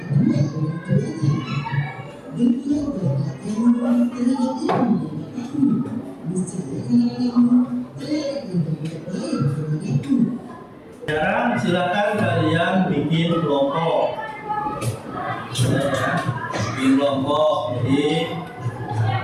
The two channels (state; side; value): identical; both; correlation 1.00